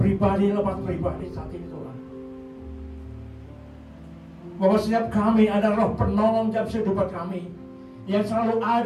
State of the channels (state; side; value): identical; both; correlation 1.00